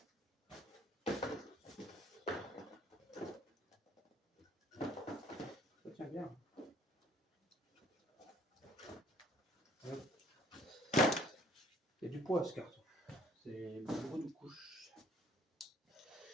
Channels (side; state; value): both; normal; correlation 0.58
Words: Ça tient bien. Hop. Il y a du poids ce carton. C'est beaucoup de couches.